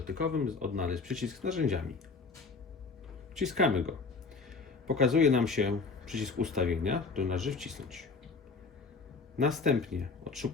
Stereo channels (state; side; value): quieter; right; 4.4 dB